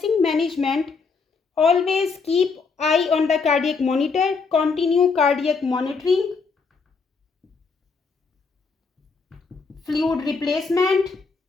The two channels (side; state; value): right; quieter; 4.8 dB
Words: management, always keep eye on the cardiac monitor, continue cardiac monitoring, fluid replacement,